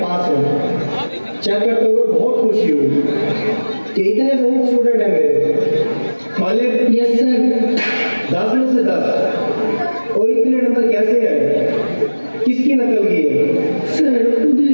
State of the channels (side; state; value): both; inverted; correlation -1.00